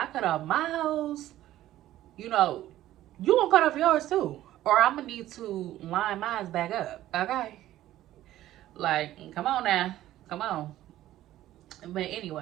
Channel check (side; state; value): left; quieter; 14.0 dB